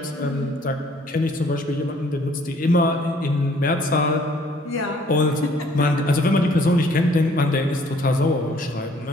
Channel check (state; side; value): normal; both; correlation 0.60